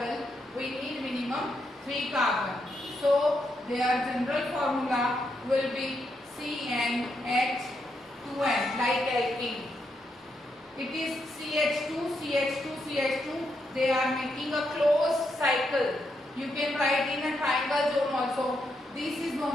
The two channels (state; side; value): normal; both; correlation 0.81